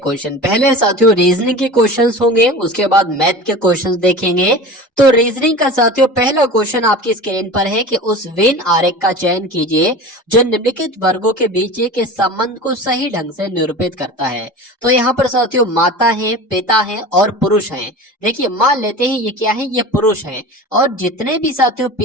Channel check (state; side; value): normal; both; correlation 0.34